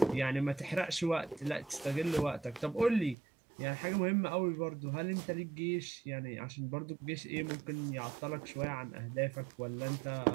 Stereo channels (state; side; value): drops out; left; at 3.2 s